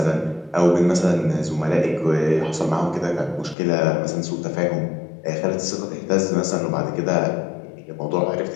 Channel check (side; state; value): right; drops out; at 3.6 s